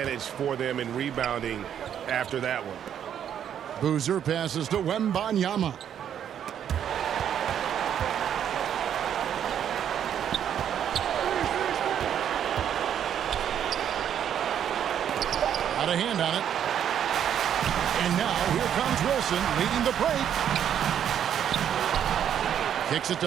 for them in rebounding after that one. Boozer passes to Wembanyama. Got a hand on it. And now here comes Wilson leading the break. Kicks it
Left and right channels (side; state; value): left; quieter; 9.4 dB